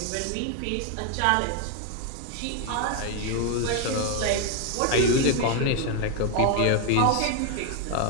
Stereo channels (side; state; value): both; different; correlation 0.01